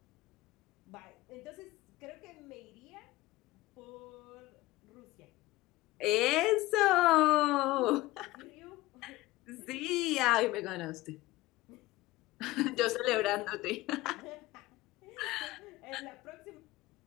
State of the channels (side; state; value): right; quieter; 18.6 dB